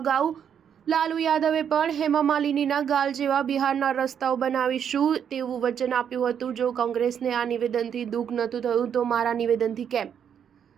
લાલુ યાદવે પણ હેમા માલિનીના ગાલ જેવા બિહારના રસ્તાઓ બનાવીશું તેવું વચન આપ્યું હતું. જો કોંગ્રેસને આ નિવેદનથી દુઃખ નહોતું થયું તો મારા નિવેદનથી કેમ?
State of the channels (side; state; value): left; quieter; 8.3 dB